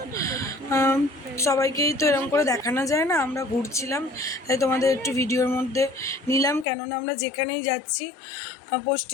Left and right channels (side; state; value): right; drops out; at 6.7 s